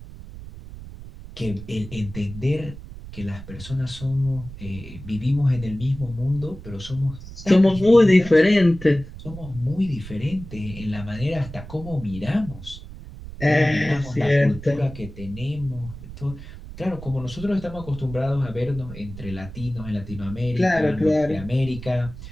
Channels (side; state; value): right; noise; rumble, 14 dB below the sound